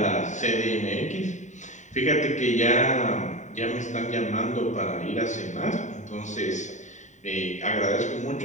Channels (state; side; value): late; right; 0.35 ms